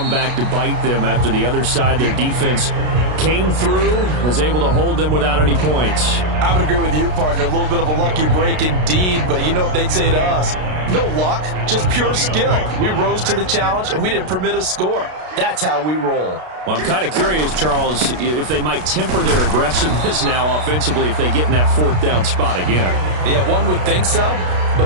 back to bite them after the other side. Their defense came through, was able to hold them without any points. I would agree with you, partner. A little bit of a lucky break indeed, but you know what they'd say to us? No luck, just pure skill. We rose to the challenge, and we didn't permit a score. That's how we roll. Well, I'm kind of curious, Charles, if they might temper their aggressiveness now offensively if they get in that fourth down spot again. Yeah, one would think so.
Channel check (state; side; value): late; left; 33 ms